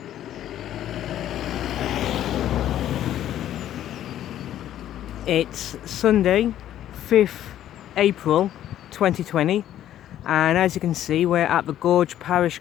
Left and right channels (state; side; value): quieter; right; 11.8 dB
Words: It's Sunday, 5th April 2020, and as you can see we're at the Gorge Parish